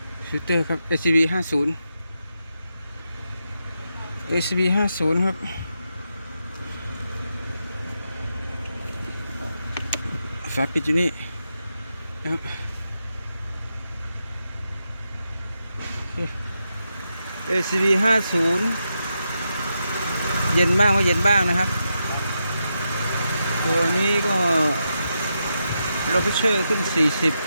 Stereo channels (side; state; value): both; inverted; correlation -0.86